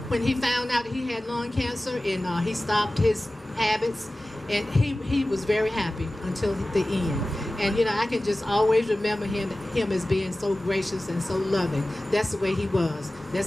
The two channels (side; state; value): both; normal; correlation 0.96